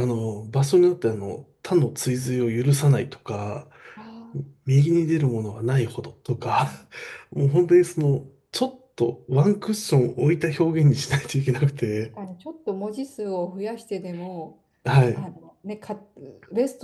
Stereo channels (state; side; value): identical; both; correlation 1.00